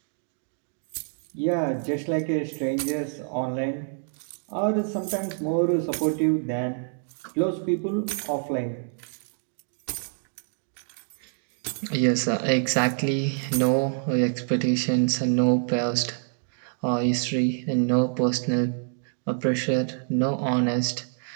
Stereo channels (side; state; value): left; silent; digital silence